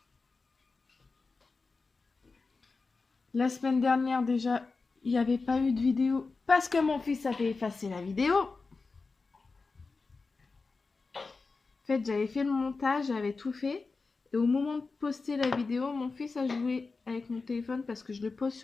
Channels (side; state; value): right; quieter; 4.1 dB